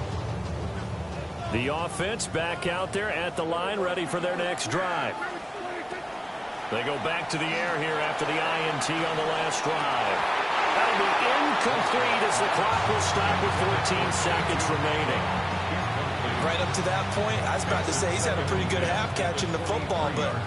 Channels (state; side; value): identical; both; correlation 1.00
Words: The offense back out there at the line, ready for their next drive. They go back to the air here after the INT on the last drive. That'll be incomplete as the clock will stop with 14 seconds remaining. Right up to that point, I was about to say he's had a pretty good half catching the football, but